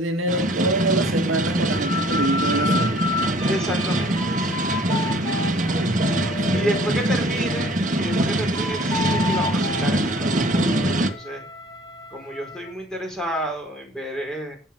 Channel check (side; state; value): both; normal; correlation 0.54